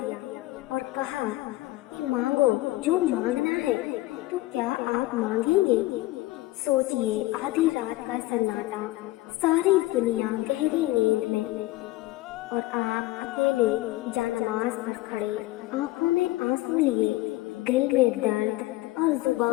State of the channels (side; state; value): right; quieter; 18.4 dB